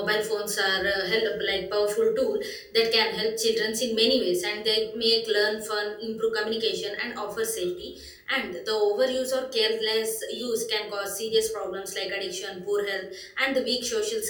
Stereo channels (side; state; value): both; identical; correlation 1.00